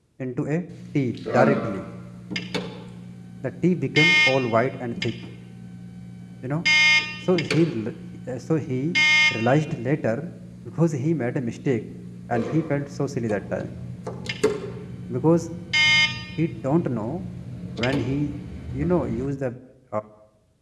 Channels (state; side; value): identical; both; correlation 1.00